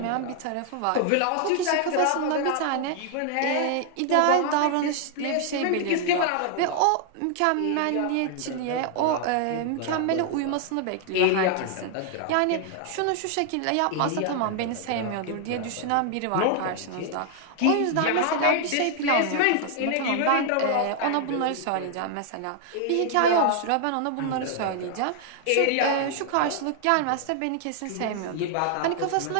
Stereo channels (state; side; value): different; both; correlation 0.00